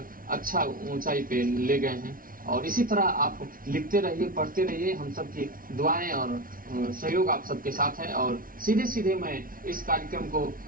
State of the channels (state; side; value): late; left; 0.41 ms